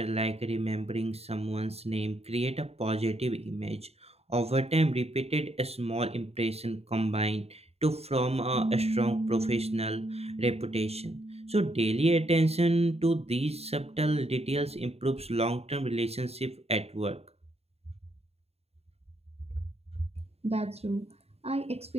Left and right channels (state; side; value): late; left; 0.30 ms